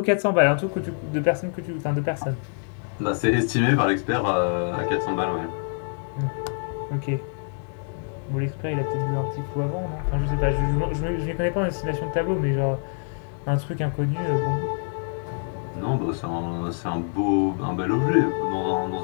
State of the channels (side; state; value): right; silent; 61 dB below the other